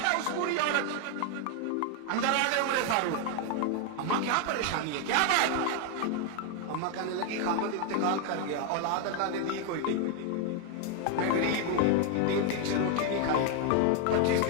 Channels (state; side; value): different; both; correlation 0.01